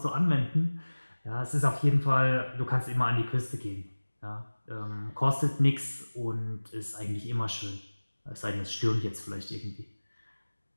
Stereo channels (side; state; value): both; inverted; correlation -1.00